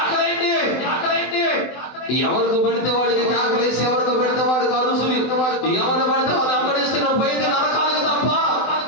ఎవరికి పడితే వాడికి కేకలేసి, ఎవరికి పెడితే వాడికి అరుసులు, ఎవరు పడితే వాళ్ళు వెంబడిస్తే నువ్వు పోయితే నరకానికి తప్ప,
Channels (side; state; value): right; late; 24 ms